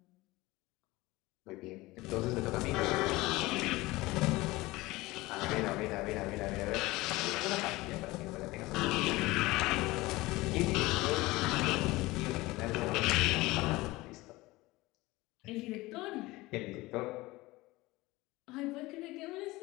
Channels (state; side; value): quieter; right; 20.3 dB